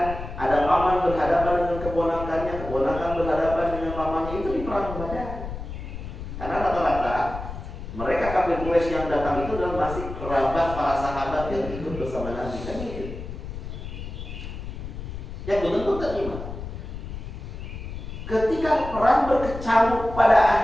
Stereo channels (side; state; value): left; noise; rumble, 9 dB below the sound